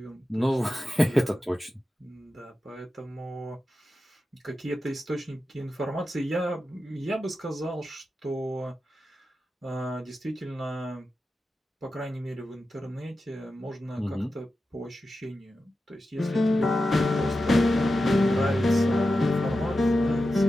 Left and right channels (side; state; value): both; normal; correlation 0.91